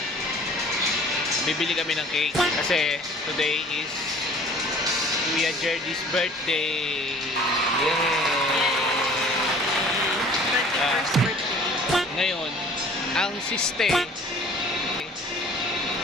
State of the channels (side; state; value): both; normal; correlation 0.49